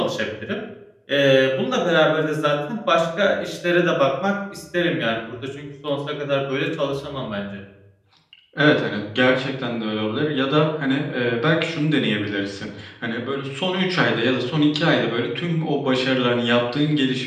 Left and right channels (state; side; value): identical; both; correlation 1.00